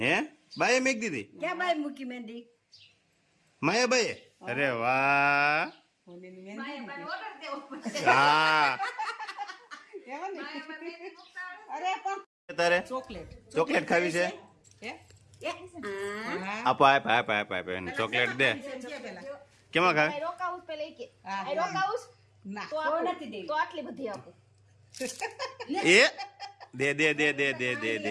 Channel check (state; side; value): identical; both; correlation 1.00